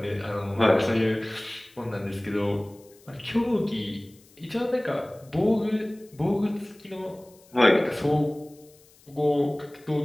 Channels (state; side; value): noise; left; hiss, 28 dB below the sound